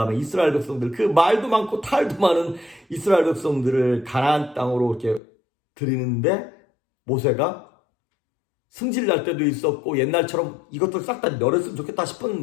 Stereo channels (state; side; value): drops out; right; at 5.2 s